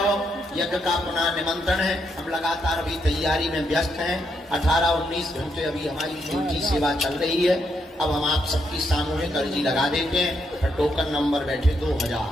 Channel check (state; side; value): normal; both; correlation 0.78